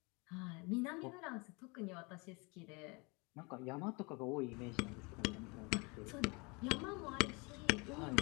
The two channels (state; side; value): quieter; right; 28.9 dB